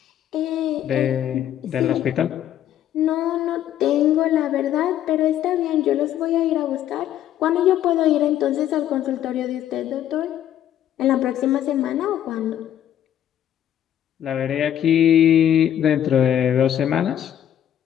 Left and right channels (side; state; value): right; quieter; 11.0 dB